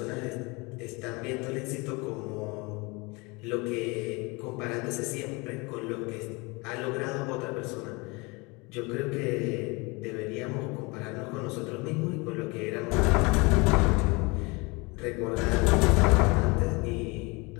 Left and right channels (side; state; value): right; quieter; 26.8 dB